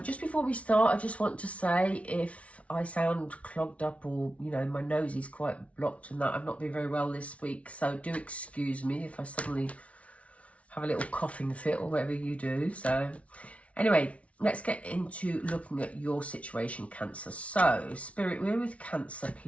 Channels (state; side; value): late; right; 0.064 ms